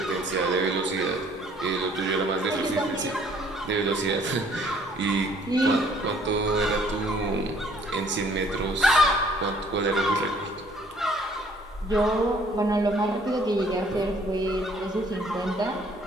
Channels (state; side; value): normal; both; correlation 0.60